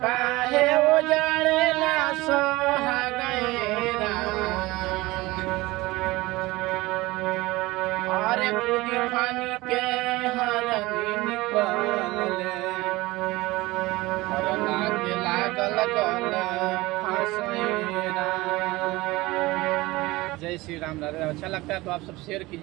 काहे उजाड़े ना सोहागैरा अरे कूदी फानी के हरनी निकलले हरना के लागल गले फसेरा। जय श्री राम। अच्छा लगता है तो आप सब शेयर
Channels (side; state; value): left; quieter; 20.4 dB